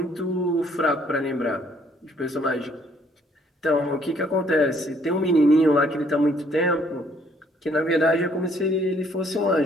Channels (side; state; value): both; normal; correlation 0.65